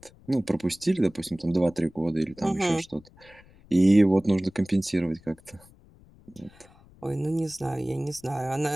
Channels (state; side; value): noise; left; rumble, 26 dB below the sound